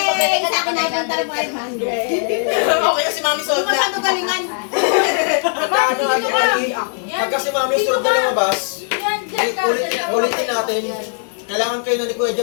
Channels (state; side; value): silent; right; digital silence